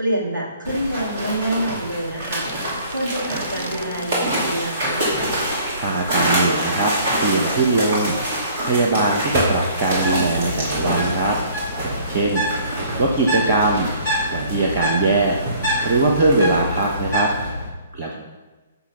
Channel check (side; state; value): both; inverted; correlation -0.55